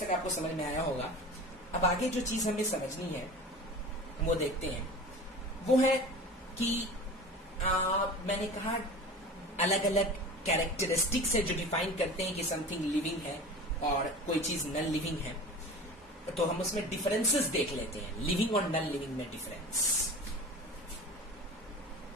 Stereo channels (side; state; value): both; normal; correlation 0.36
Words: आपको समझ में आया होगा। अब आगे जो चीज हमें समझनी है वो देखते हैं। वो है कि मैंने कहा अलग अलग कैरेक्टरिस्टिक्स है जो डिफाइन करते हैं कि समथिंग लिविंग है और कोई चीज नन लिविंग है। तो हम उसमें डिफरेंसेस देख लेते हैं, लिविंग और नन लिविंग में डिफरेंस।